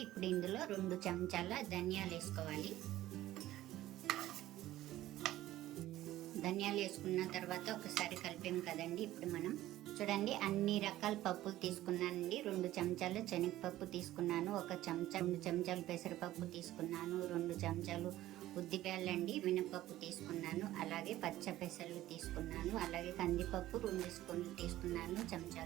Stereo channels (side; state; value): left; quieter; 14.9 dB